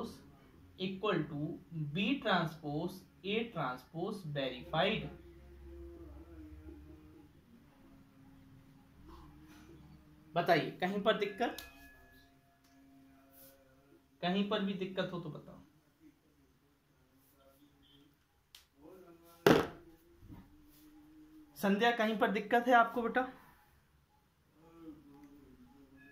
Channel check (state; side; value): identical; both; correlation 1.00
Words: equal to B transpose A transpose verified. बताइए कहीं पर दिक्कत, कहीं पर भी दिक्कत हो तो बताओ। संध्या कहीं पर दिक्कत है आपको बेटा?